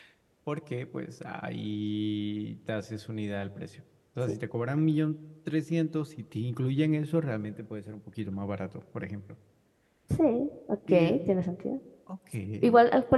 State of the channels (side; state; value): both; identical; correlation 1.00